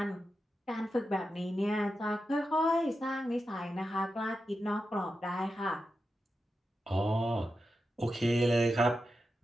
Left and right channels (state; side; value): normal; both; correlation 0.90